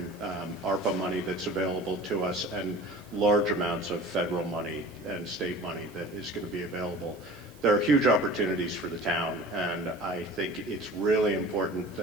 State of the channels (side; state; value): right; noise; hiss, 26 dB below the sound